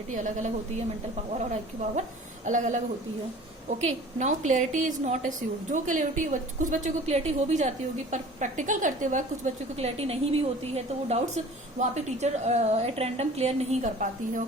अलग अलग होती है, मेंटल पावर और आईक्यू पावर अलग अलग होती है। Okay, now clarity is not assured. जो क्लियरिटी कुछ बच्चों को क्लियरिटी हो भी जाती होगी, पर प्रैक्टिकल करते वक्त कुछ बच्चों को क्लियरिटी नहीं भी होती है, तो वो डाउट्स वहाँ पे टीचर एट रैंडम क्लियर नहीं कर पाती है।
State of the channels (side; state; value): both; normal; correlation 0.45